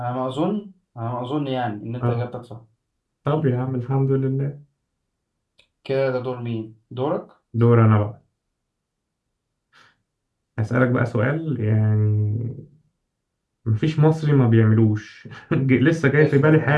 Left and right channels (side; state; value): both; identical; correlation 1.00